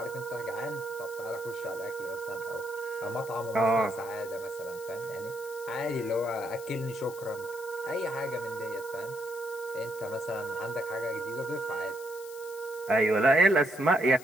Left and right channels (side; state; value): left; noise; hiss, 17 dB below the sound